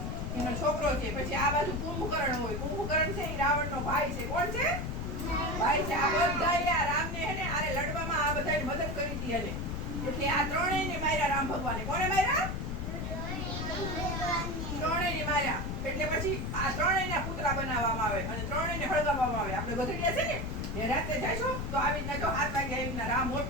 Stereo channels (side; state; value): left; noise; rumble, 3 dB below the sound